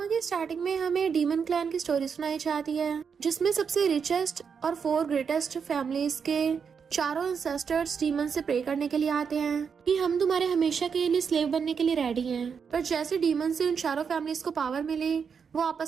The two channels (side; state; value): left; quieter; 6.4 dB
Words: की स्टार्टिंग में हमें डीमन क्लैन की स्टोरी सुनाई जाती है, जिसमें सबसे रिचेस्ट और 4 ग्रेटेस्ट फैमिलीज के चारों एंसेस्टर्स डीमन से प्रे करने के लिए आते हैं कि हम तुम्हारे हमेशा के लिए स्लेव बनने के लिए रेडी हैं। पर जैसे डीमन से उन चारों फैमिलीज को पावर मिली, वो